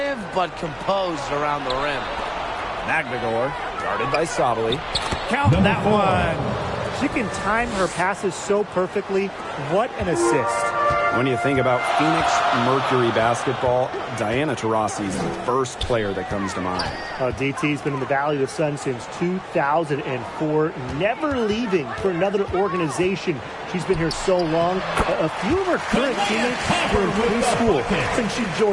but composed around the rim. Magdagor, guarded by Sabali. Count that one. She can time her passes so perfectly. What an assist. When you think about Phoenix Mercury basketball, Diana Taurasi's the first player that comes to mind. DT's been in the Valley of the Sun since 2004, never leaving for another organization. She's been here so long. A few of her current teammates were in preschool since she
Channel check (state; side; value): identical; both; correlation 1.00